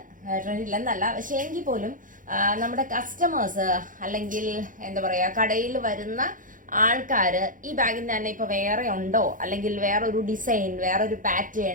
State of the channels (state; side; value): late; left; 0.39 ms